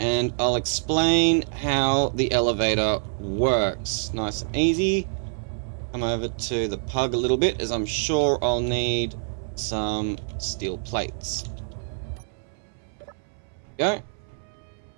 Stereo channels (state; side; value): silent; left; 61 dB below the other